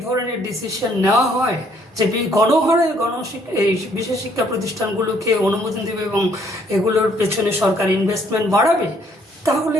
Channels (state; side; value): normal; both; correlation 0.65